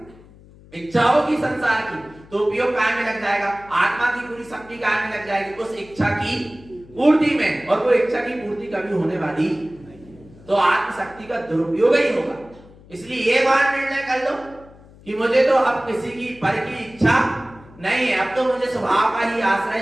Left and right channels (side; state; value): left; noise; hum, 23 dB below the sound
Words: इच्छा होगी संसार की तो उपयोग काय में लग जाएगा? आत्मा की पूरी शक्ति काय में लग जाएगी? उस इच्छा की पूर्ति में। और वो इच्छा की पूर्ति कभी होने वाली, तो आत्मशक्ति का दुरुपयोग ही होगा। इसलिए ये बात निर्णय कर लो कि मुझे तो अब किसी की पर की इच्छा नहीं है, अब तो मुझे स्वभाव का ही